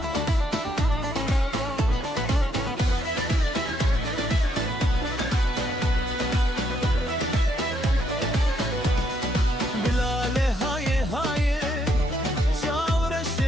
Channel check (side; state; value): both; normal; correlation 0.73